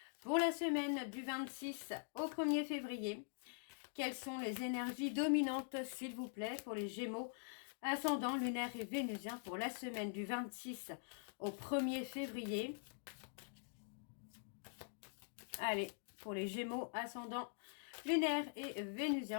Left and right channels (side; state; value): right; silent; digital silence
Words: pour la semaine du 26 au 1er février. Quelles sont les énergies dominantes, s'il vous plaît, pour les Gémeaux, ascendant, lunaire et vénusien pour la semaine du 26 au 1er février. Allez, pour les Gémeaux, ascendant, lunaire et